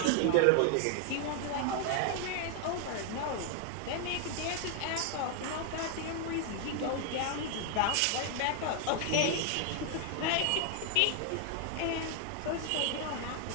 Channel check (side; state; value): both; different; correlation 0.00